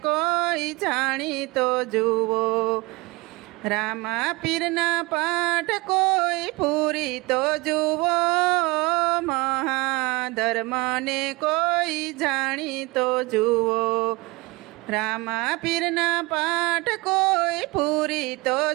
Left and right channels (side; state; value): left; quieter; 23.5 dB